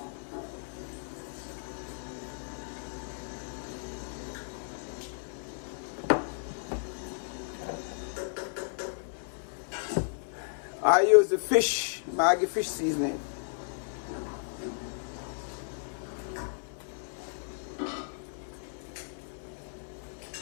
I use the fish, Maggi fish seasoning.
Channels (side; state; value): right; silent; 55 dB below the other